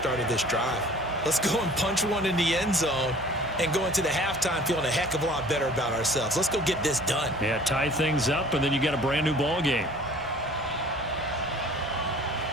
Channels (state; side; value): normal; both; correlation 0.48